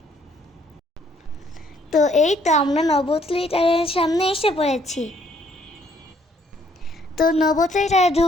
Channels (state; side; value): normal; both; correlation 0.66